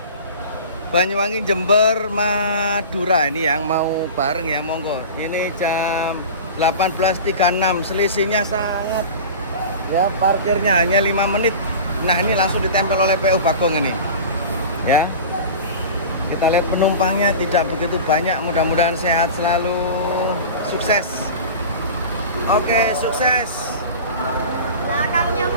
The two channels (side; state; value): both; inverted; correlation -0.34